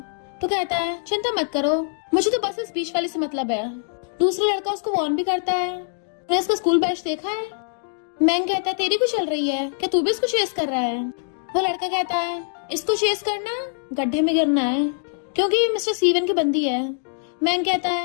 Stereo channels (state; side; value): silent; right; digital silence